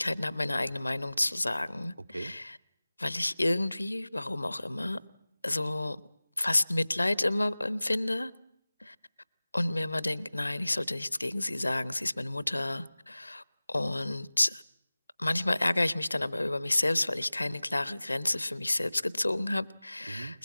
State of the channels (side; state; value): both; inverted; correlation -0.99